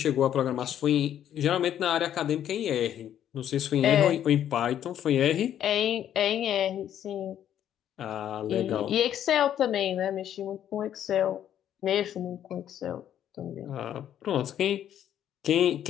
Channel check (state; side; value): quieter; right; 10.5 dB